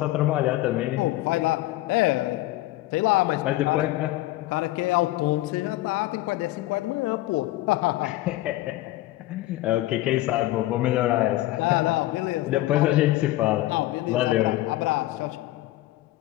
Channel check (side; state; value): right; quieter; 16.9 dB